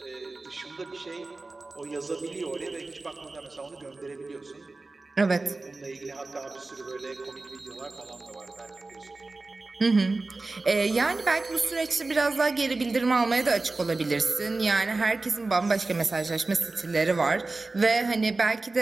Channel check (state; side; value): quieter; left; 3.4 dB